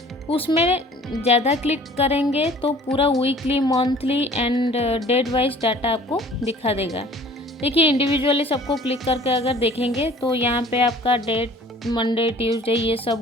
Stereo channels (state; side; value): normal; both; correlation 0.50